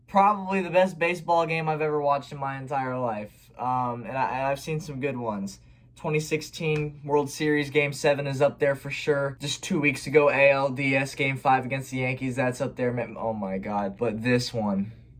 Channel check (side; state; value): both; identical; correlation 1.00